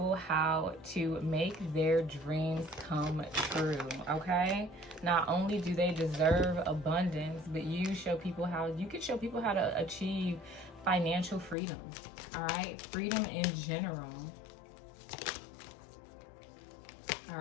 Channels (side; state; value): right; drops out; at 11.6 s